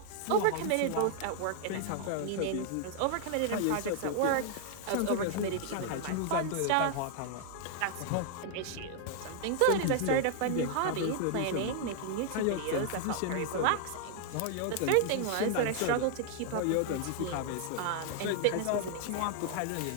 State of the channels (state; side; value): different; both; correlation 0.00